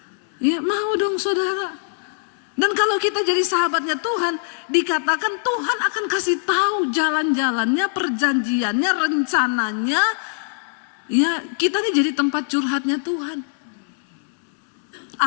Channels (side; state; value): right; silent; 64 dB below the other